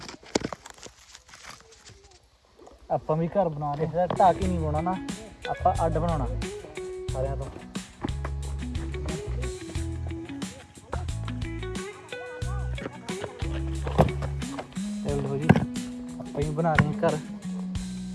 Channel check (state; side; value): identical; both; correlation 1.00